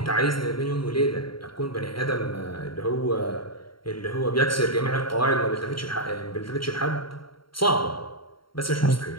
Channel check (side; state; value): right; late; 0.73 ms